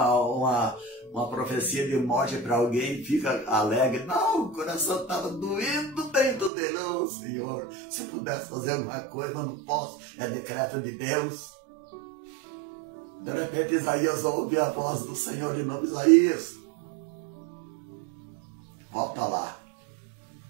profecia de morte para alguém e fica alegre? Não, o coração estava doendo dentro dele. Oh, Senhor, se pudesse fazer alguma coisa, mas não posso, é decreto de Deus. De repente Isaías ouve a voz do Senhor de novo: Isaías, volta lá.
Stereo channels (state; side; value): drops out; left; at 6.5 s